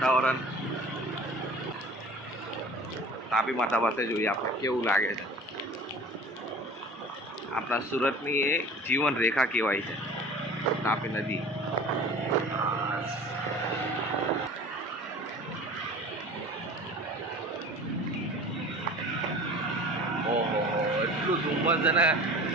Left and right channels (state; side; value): normal; both; correlation 0.41